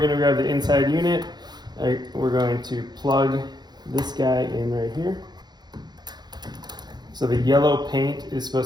to grab the inside unit. We're going to plug this guy in right here. So the yellow paint is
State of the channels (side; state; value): left; late; 0.20 ms